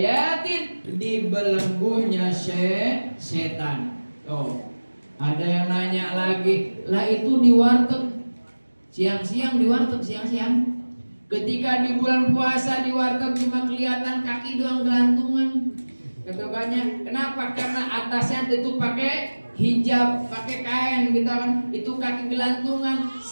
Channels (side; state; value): both; inverted; correlation -1.00